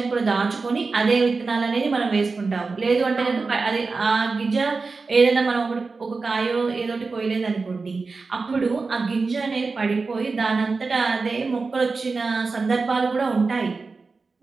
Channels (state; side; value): quieter; left; 4.2 dB